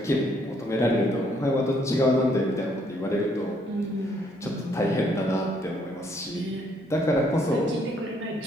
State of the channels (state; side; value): normal; both; correlation 0.68